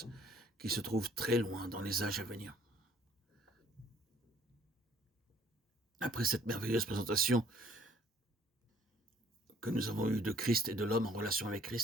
qui se trouvent très loin dans les âges à venir? Après cette merveilleuse présentation que nous avons eue de Christ et de l'homme en relation avec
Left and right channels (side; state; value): both; normal; correlation 0.59